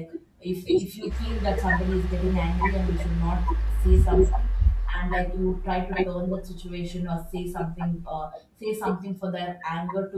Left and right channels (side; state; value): both; identical; correlation 1.00